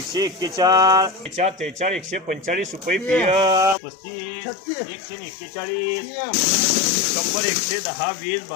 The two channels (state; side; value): drops out; right; at 3.8 s